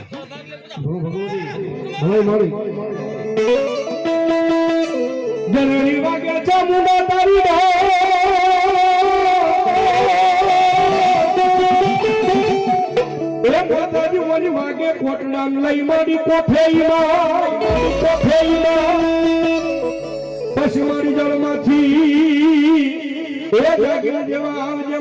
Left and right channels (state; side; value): identical; both; correlation 1.00